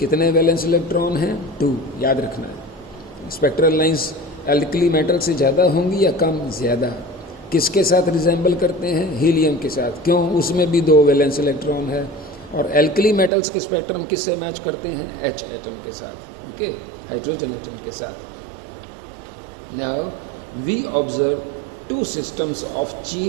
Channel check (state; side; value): drops out; left; at 13.3 s